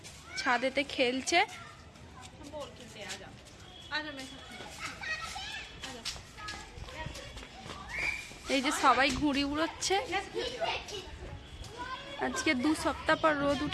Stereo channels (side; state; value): both; identical; correlation 1.00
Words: ছাদেতে খেলছে। এই যে সবাই ঘুড়ি উড়োচ্ছে। আজকে 2 সপ্তাহ পর রোদ